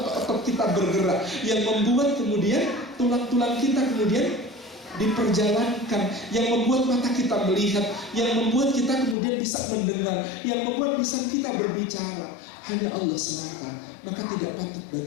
otot-otot kita bergerak, yang membuat kemudian tulang-tulang kita kemudian diperjalankan, yang membuat mata kita melihat, yang membuat kita kemudian bisa mendengar, yang membuat lisan kita berbicara, hanya Allah semata. Maka tidak patut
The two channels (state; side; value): drops out; right; at 9.2 s